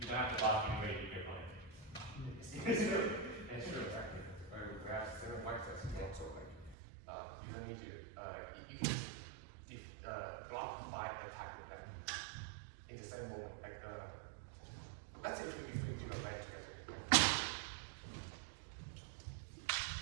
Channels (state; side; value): drops out; left; at 6.8 s